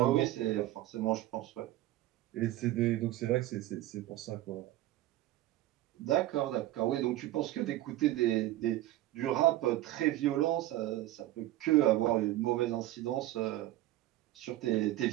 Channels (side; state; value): left; quieter; 15.3 dB